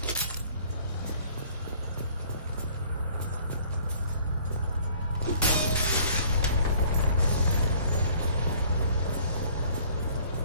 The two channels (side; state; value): both; inverted; correlation -0.54